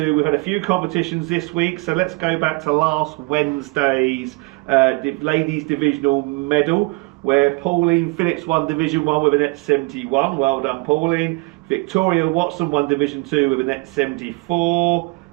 we've had a few competitions this week, so let's go back to last Wednesday's ladies divisional medal, where Pauline Phillips won Division 1 with a net 71. Well done, Pauline. Victoria Watson won Division 2 with a net 74.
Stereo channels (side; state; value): left; quieter; 27.8 dB